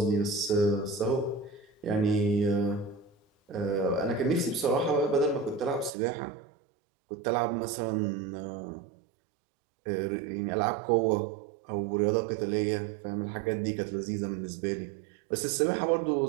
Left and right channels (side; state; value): left; drops out; at 5.9 s